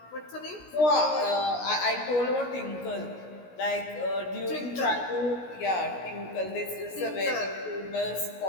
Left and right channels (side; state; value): right; late; 16 ms